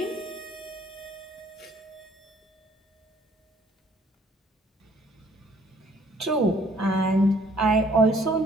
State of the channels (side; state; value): both; normal; correlation 0.60